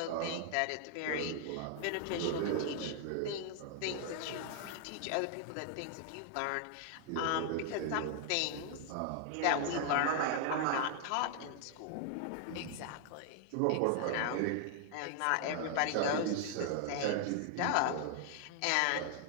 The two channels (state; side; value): different; both; correlation 0.00